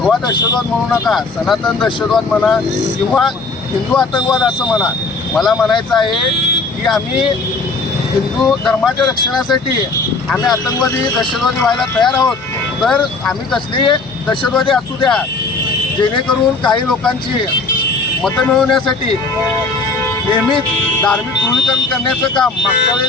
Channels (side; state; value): right; quieter; 3.7 dB